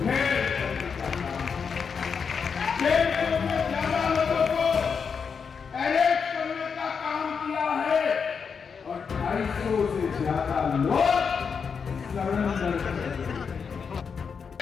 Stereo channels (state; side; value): quieter; right; 6.1 dB